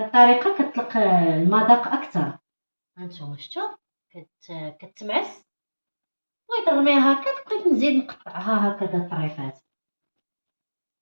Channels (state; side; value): inverted; both; correlation -1.00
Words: كتطلق المذاق اكثر. هانتوما شفتوا كتمعس. بغيت نرميها هكا، بقيت نزيد نقطعها هكذا طريفات